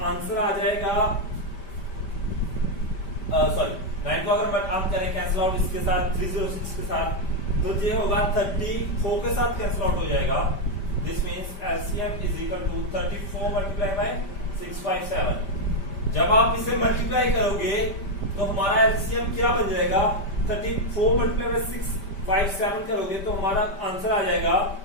आंसर आ जाएगा। सॉरी 9 को अगर हम करें कैंसिल आउट इसके साथ 306 के साथ तो ये होगा 34 के साथ कैंसिल आउट हो जाएगा। This means LCM is equal to 34 multiply by 657। जब आप इसे मल्टीप्लाई करोगे तो हमारा एलसीएम क्या बन जाएगा 34 मल्टीप्लाई बाय 657 करोगे तो हमारा आंसर आ जाएगा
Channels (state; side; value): late; right; 5.1 ms